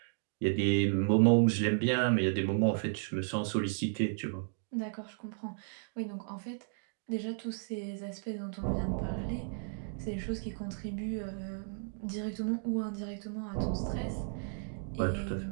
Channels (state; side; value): silent; left; digital silence